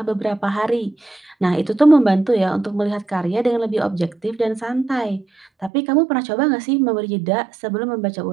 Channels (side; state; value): left; drops out; at 5.7 s